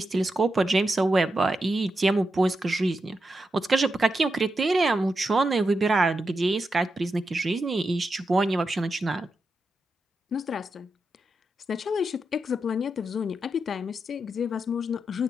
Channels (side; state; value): both; normal; correlation 0.87